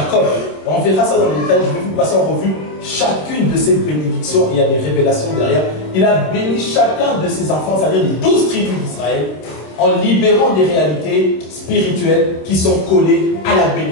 on verra ça dans les détails, je vais vous passer en revue chacune de ses bénédictions, il y a des révélations derrière. Il a béni chacun de ses enfants, c'est-à-dire les 12 tribus d'Israël, en libérant des réalités spirituelles qui sont collées à la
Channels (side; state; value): right; late; 26 ms